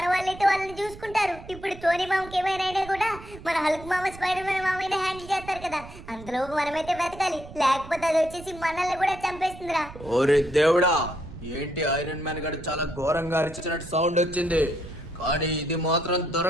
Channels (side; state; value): right; noise; rumble, 16 dB below the sound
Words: వాళ్ళైతే వాళ్ళని చూసుకుంటారు. ఇప్పుడు టోనీ మామకి ఏమైనా అయినా కూడా మన హల్క్ మామ, స్పైడర్ మ్యాన్ మామైనా హ్యాండిల్ చేస్తారు కదా. అంతలోపు మనమైతే వెతకాలి, లేకపోతే అది వచ్చేసి మనల్ని కూడా చంపేస్తుందిరా. ఓరే దేవుడా, ఏంటి ఐరన్ మ్యాన్ గడు చాలా ఘోరంగా అరిచినట్టు సౌండ్ వచ్చింది, కానీ ఇది మాత్రం